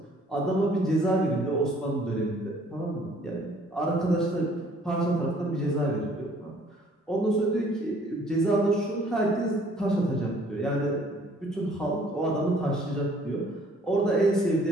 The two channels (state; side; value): normal; both; correlation 0.58